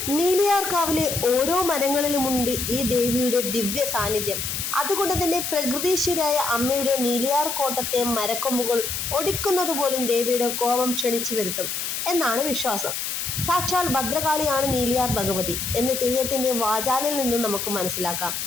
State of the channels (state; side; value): noise; left; hiss, 3 dB below the sound